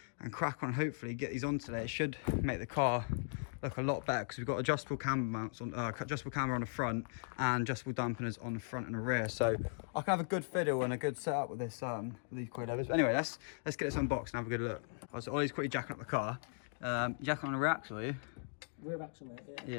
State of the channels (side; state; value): right; silent; digital silence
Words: and crack on, hopefully get these on today. It should make the car look a lot better because we've got adjustable camber mounts on, adjustable camber on the front and adjustable dampeners on the front and the rear. So I can have a good fiddle and a good setup with this with these coilovers. Anyway, let's get this unboxed and have a good look. Right, so Ollie's quickly jacking up the car. Jacking on the rear axle, are you? Rear axle, mate, yeah.